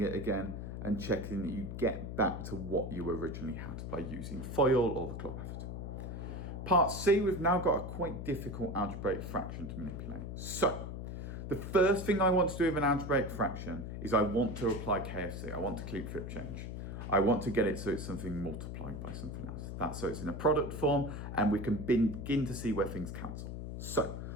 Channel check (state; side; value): noise; left; hum, 6 dB below the sound